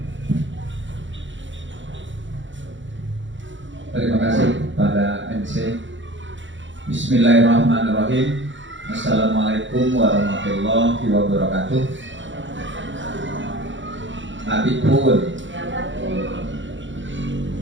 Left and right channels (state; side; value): late; left; 0.55 ms